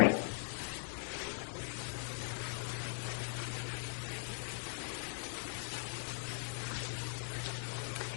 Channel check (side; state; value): right; silent; 51 dB below the other